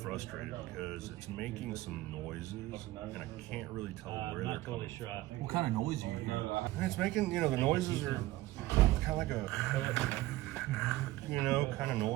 because it's making some noises and I can't really tell where they're coming from. What kind of noise are you hearing? And it's making, the noises are kind of like a, kind of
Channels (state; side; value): quieter; left; 17.3 dB